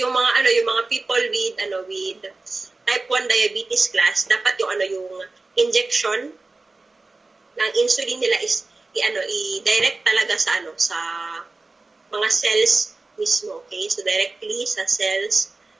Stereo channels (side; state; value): left; quieter; 3.5 dB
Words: mga people with type 1 diabetes class, dapat yung injection ng insulin nila is i-direct talaga sa mga cells mismo, okay? So directly sa cells